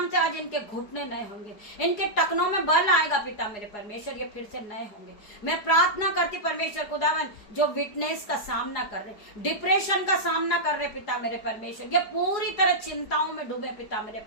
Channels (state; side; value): late; right; 4.8 ms